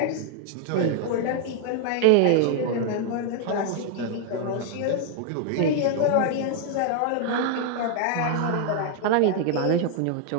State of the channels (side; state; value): both; different; correlation 0.00